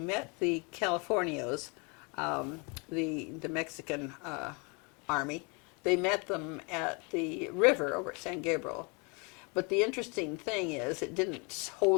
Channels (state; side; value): quieter; right; 31.9 dB